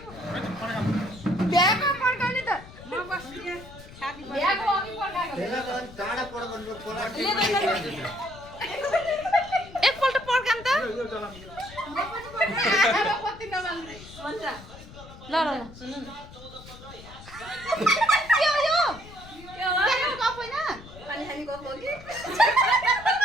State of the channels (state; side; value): noise; left; rumble, 18 dB below the sound